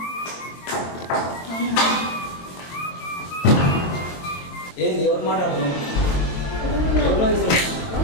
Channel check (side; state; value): right; late; 22 ms